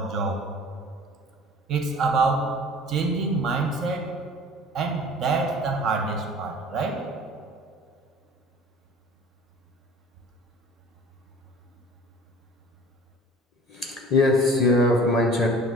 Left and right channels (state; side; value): normal; both; correlation 0.45